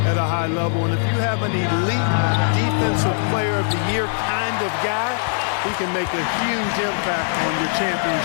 at a high level. And if you have an elite defensive player of the year kind of guy, he can make a huge impact on your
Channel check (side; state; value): right; silent; digital silence